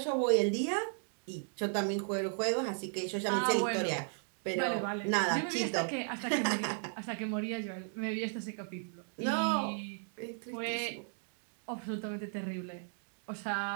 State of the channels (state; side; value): silent; left; 54 dB below the other